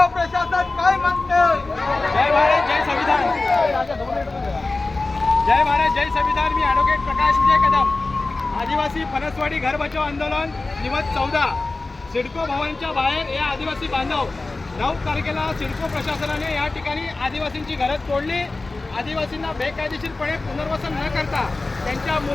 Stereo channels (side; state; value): right; quieter; 3.4 dB